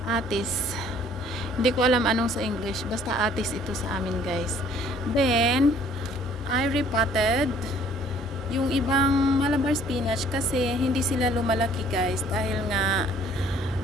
Hindi ko alam anong sa English. Basta atis ito sa amin guys. Then, I repotted yung ibang Malabar spinach kasi hindi sila lumalaki guys. Dahil nga,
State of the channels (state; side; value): normal; both; correlation 0.58